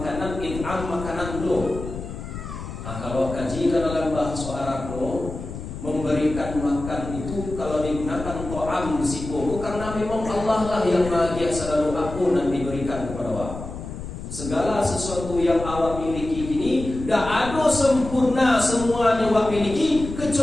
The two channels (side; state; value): left; noise; rumble, 9 dB below the sound